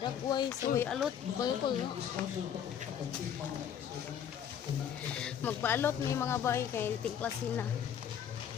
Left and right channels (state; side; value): quieter; right; 8.9 dB